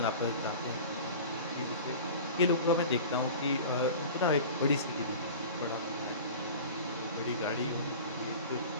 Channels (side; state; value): both; inverted; correlation -0.37